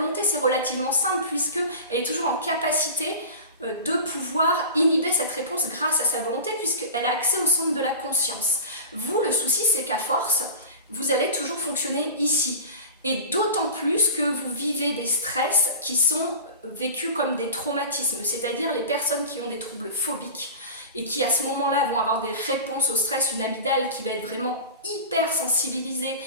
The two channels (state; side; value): inverted; both; correlation -0.33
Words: c'est relativement simple, puisqu'elle est toujours en capacité de pouvoir inhiber cette réponse grâce à sa volonté, puisqu'elle a accès au centre de la conscience. Vous, le souci, c'est qu'à force, vous allez toujours fonctionner ici. Et d'autant plus que vous vivez des stress qui sont vécus comme des traumatismes, c'est-à-dire les personnes qui ont des troubles phobiques et qui à ce moment-là vont avoir des réponses au stress, une amygdale qui va être vraiment hyper sensibilisée,